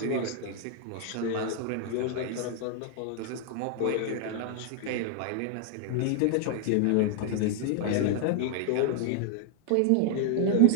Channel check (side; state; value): both; different; correlation 0.00